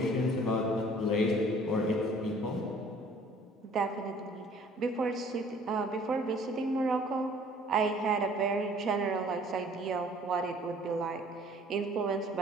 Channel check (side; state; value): both; normal; correlation 0.54